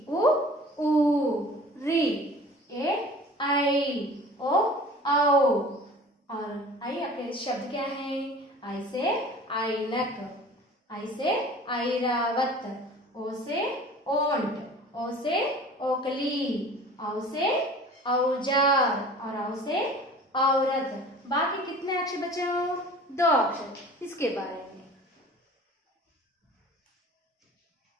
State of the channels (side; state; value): both; normal; correlation 0.44